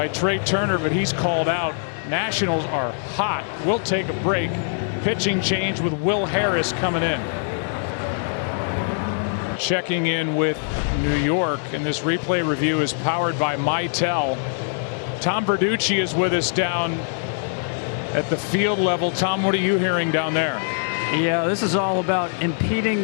Trey Turner, but he's called out. Nationals are hot. We'll take a break. Pitching change with Will Harris coming in. Checking in with New York, and this replay review is powered by Mitel. Tom Verducci is with us down at the field level. Tom, what are you hearing down there? Yeah, this is all about impeding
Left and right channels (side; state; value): right; silent; digital silence